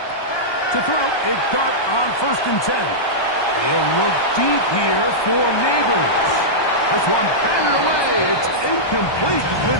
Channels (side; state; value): right; late; 1.2 ms